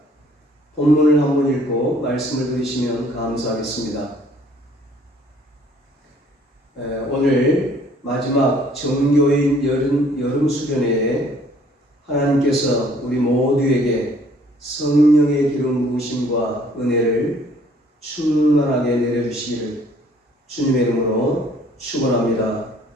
본문을 한번 읽고 말씀을 들으시면 감사하겠습니다. 오늘 마지막 정교인 여름 수련회에 하나님께서 우리 모두에게 성령의 기름 부으심과 은혜를 충만하게 내려주시기를 주님의 이름으로 축원합니다.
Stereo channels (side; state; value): both; normal; correlation 0.59